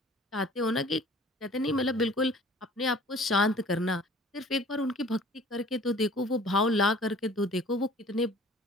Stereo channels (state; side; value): normal; both; correlation 0.49